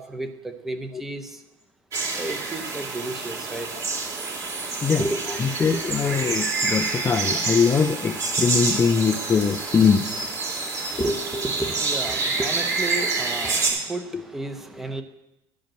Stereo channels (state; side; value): normal; both; correlation 0.50